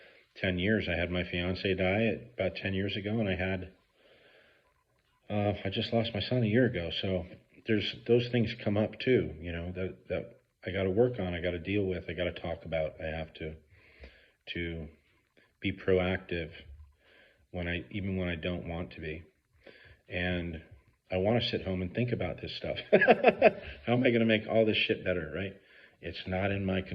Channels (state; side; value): identical; both; correlation 1.00